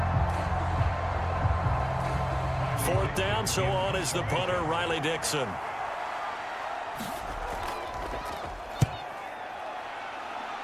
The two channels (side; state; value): both; identical; correlation 1.00